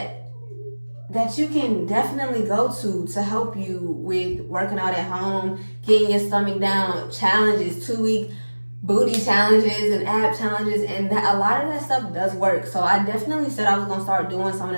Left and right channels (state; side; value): inverted; both; correlation -1.00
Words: you can definitely go to help you with working out at home, getting your stomach down, challenges, 2-week booty challenges and ab challenges, and that a lot of that stuff does work. So I definitely said I was gonna start doing some